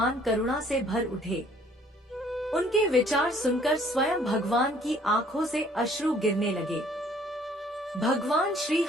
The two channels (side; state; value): both; normal; correlation 0.59